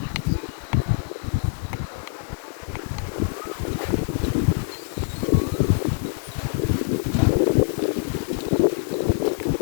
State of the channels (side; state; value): right; silent; digital silence